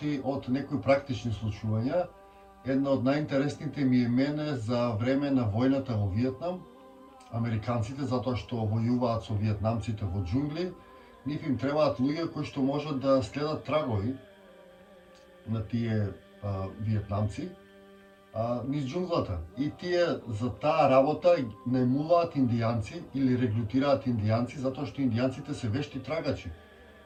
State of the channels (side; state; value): both; identical; correlation 1.00